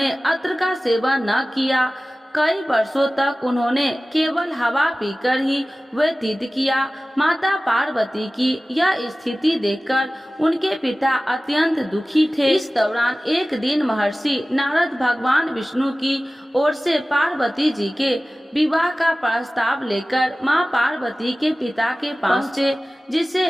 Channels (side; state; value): both; normal; correlation 0.97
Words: अत्र का सेवन न किया। कई वर्षों तक उन्होंने केवल हवा पीकर ही व्यतीत किया। माता पार्वती की यह स्थिति देखकर उनके पिता अत्यंत दुखी थे। इस दौरान एक दिन महर्षि नारद भगवान विष्णु की ओर से पार्वती जी के विवाह का प्रस्ताव लेकर माँ पार्वती के पिता के पास पहुँचे, जिसे